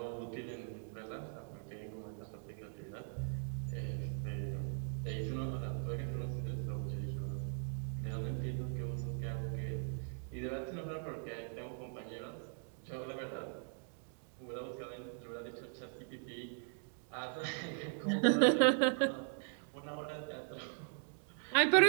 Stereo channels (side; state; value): left; silent; 51 dB below the other